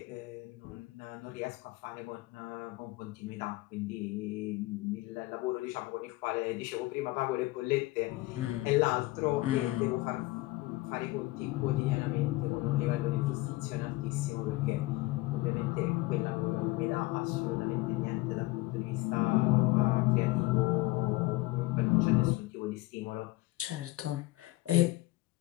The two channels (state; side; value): quieter; right; 20.1 dB